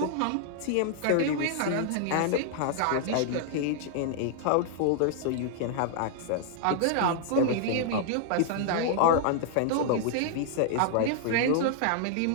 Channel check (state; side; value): different; both; correlation -0.01